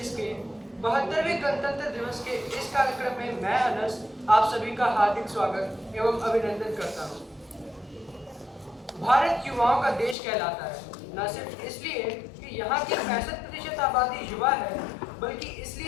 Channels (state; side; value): drops out; right; at 10.2 s